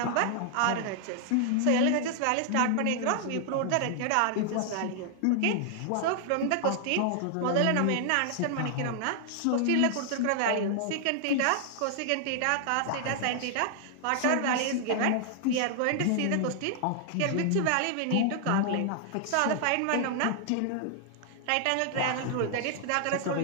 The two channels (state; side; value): different; both; correlation 0.00